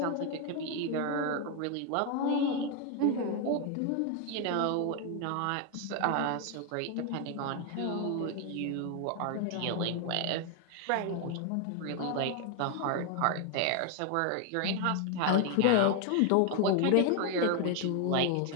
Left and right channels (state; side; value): different; both; correlation 0.01